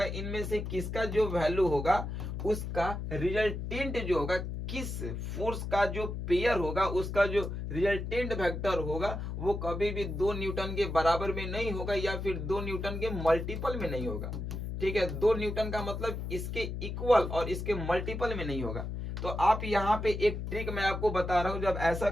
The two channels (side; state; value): left; noise; hum, 5 dB below the sound